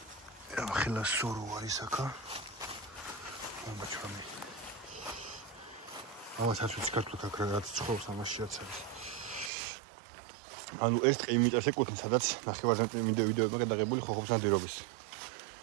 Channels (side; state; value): left; drops out; at 9.5 s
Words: ახლა სორო არის აქა ამაჩრამი ამასაც ვიწყებთ აქ რაღაც ცხოვრობს ამაშიაც არის ანუ ეს ტყე იმ მიწებს ეკუთვნის სადაც ნახევარზე ვიდეოებმა გადაღებული ხოხობს ნადირობის